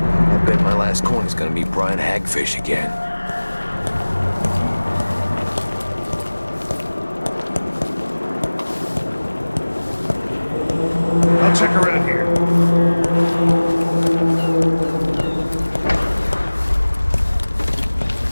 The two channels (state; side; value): inverted; both; correlation -1.00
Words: I bet my last coin is gonna meet Brian Hagfish again. I'll check around here.